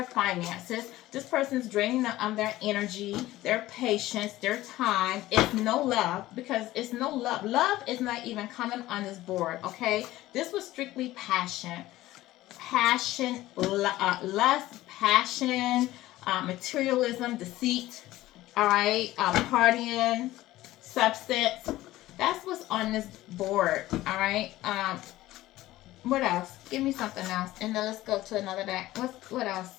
finances. This person's draining them of their energy, their patience, their time. It's no love, because it's no love. Love is not even coming on this board, okay? This was strictly passion. Passion, lust, passion, materialism, deceit, all right, partying, substance. That's what's on this board, all right. What else? Give me something else, and then let's go to another deck. What else,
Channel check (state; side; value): quieter; right; 16.3 dB